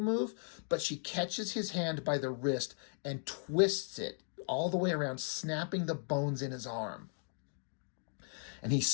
move, but she catches his hand by the wrist and twists it all the way around, snapping the bones in his arm. And he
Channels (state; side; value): silent; right; 53 dB below the other